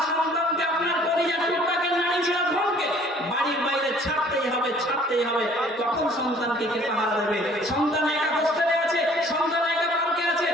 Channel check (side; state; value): both; normal; correlation 0.55